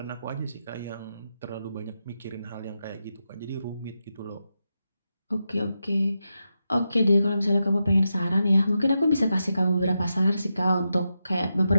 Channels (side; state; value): both; inverted; correlation -0.88